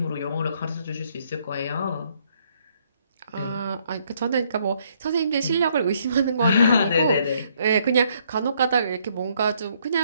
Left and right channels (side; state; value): both; inverted; correlation -0.69